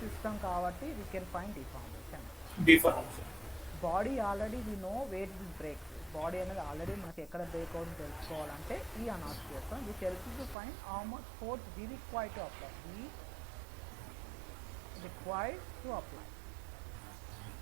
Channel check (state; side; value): drops out; left; at 10.6 s